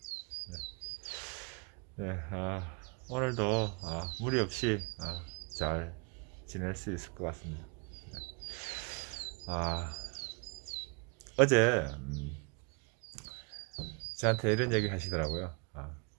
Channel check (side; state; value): left; quieter; 34.5 dB